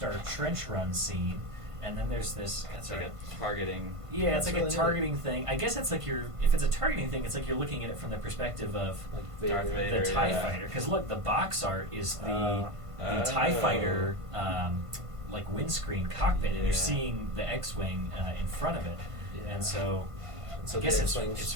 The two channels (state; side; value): late; left; 1.5 ms